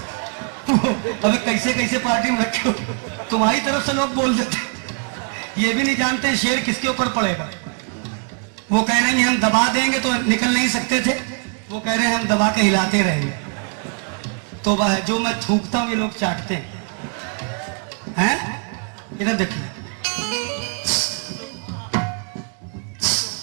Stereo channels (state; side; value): quieter; left; 39.6 dB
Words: अबे कैसे कैसे पार्टी में रखे हो, तुम्हारी तरफ से लोग बोल देते, ये भी नहीं जानते शेर किसके ऊपर पड़ेगा। वो कह रहे हैं हम दबा देंगे तो निकल नहीं सकते थे, वो कह रहे हैं हम दबा के हिलाते रहेंगे। तो वह जो मैं थूकता हूं ये लोग चाटते हैं। इधर देखिए।